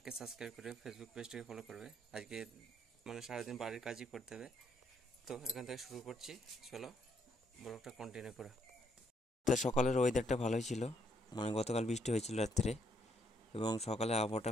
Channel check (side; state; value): both; normal; correlation 0.72